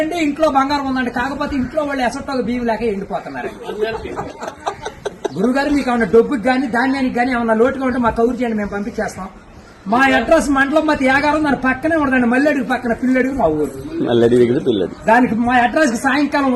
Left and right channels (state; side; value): identical; both; correlation 1.00